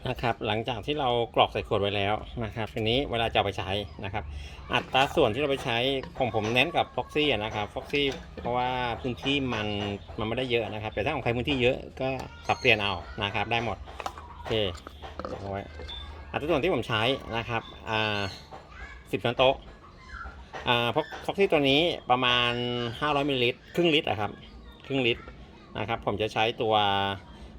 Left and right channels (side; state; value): both; identical; correlation 1.00